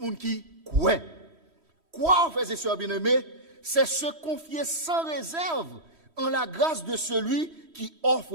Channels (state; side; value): late; left; 3.1 ms